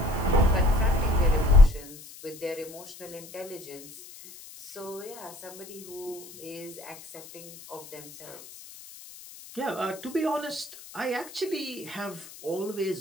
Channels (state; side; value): noise; left; hiss, 17 dB below the sound